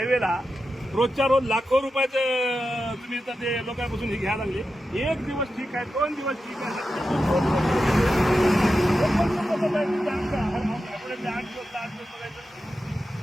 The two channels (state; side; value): normal; both; correlation 0.90